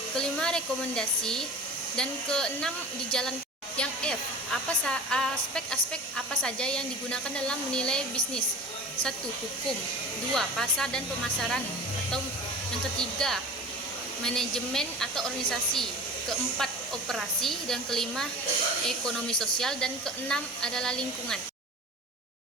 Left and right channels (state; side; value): normal; both; correlation 0.37